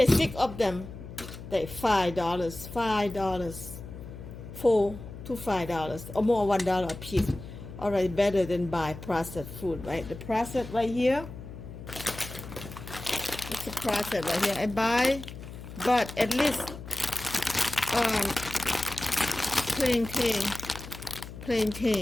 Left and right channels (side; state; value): left; noise; hum, 12 dB below the sound